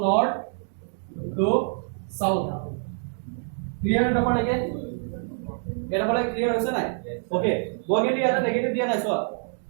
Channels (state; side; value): silent; left; digital silence